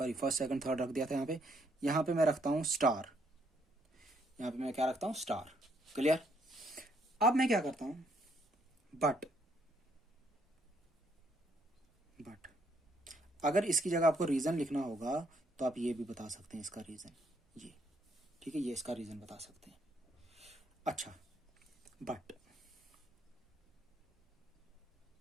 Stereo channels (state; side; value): normal; both; correlation 0.70